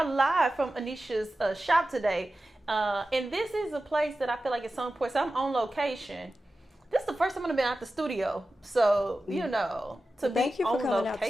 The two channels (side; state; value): both; normal; correlation 0.94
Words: live from Aneesha's shop today. And this is a place that I feel like it's so important. So I'm on location. This is the first time I've been out the studio. So, you know, to Thank be you for on coming location. out